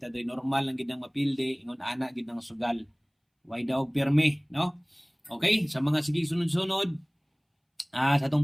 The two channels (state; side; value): identical; both; correlation 1.00